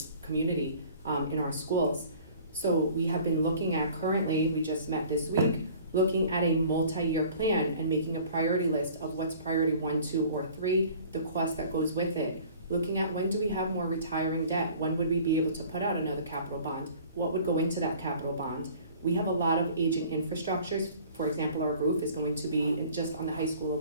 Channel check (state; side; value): inverted; both; correlation -0.49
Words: community, in our schools. So we have been looking at currently, we just met this week, looking at a multi-year plan and making a priority list of what's priority 1, 2, or 3, the cost that goes with it. Looking at when do we have more retiring debt? When would we be able to put out another capital bond? What would go into that capital bond? We have a lot of aging infrastructures. For example, our roof is going to be, just on the high school